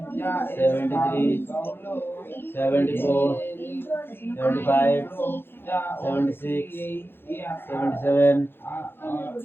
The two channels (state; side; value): late; right; 0.10 ms